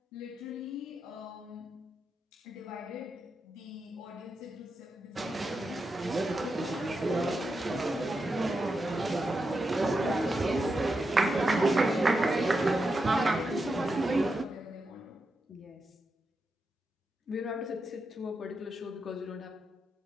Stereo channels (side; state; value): both; normal; correlation 0.87